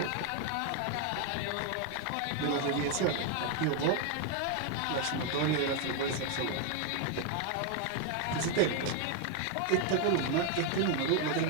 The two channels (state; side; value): different; both; correlation 0.01